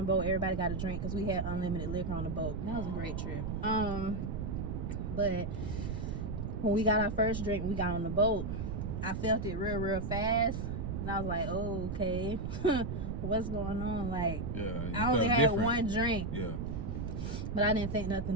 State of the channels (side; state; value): right; noise; rumble, 3 dB below the sound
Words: boat, everybody got a drink because we had unlimited liquor on the boat. That was a great trip. But when we got our first drink, we got on the boat, I felt it real fast. And I was like, oh, okay. What's going on? Like, Yeah. I only had one drink. Yeah. But I didn't think